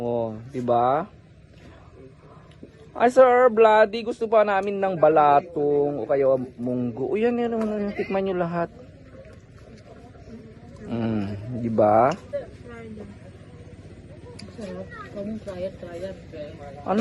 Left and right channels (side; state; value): both; identical; correlation 1.00